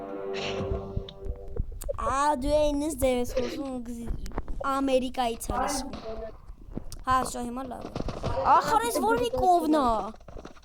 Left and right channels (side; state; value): both; identical; correlation 1.00